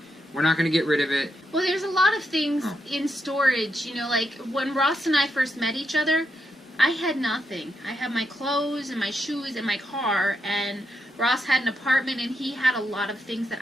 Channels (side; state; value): both; normal; correlation 0.82